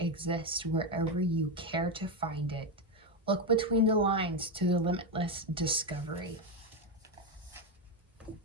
wherever you care to find it. Look between the lines to the limitless discovery.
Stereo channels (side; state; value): both; normal; correlation 0.09